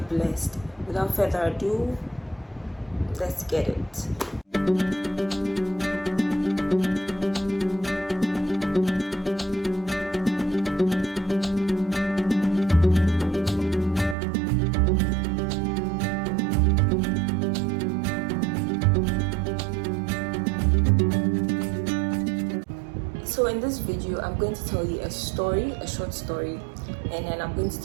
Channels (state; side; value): drops out; left; at 14.2 s